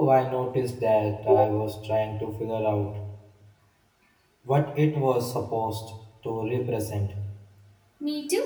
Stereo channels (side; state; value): both; identical; correlation 1.00